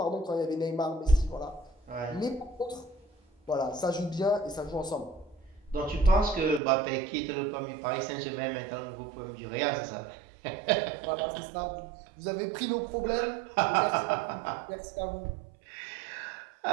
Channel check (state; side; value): drops out; left; at 6.6 s